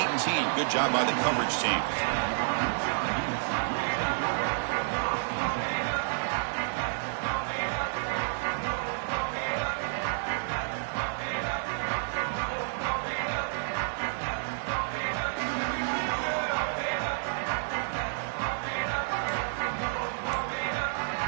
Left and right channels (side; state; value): left; silent; digital silence